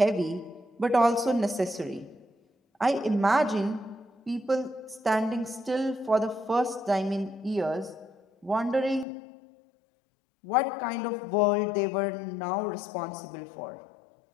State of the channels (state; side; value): drops out; right; at 9.1 s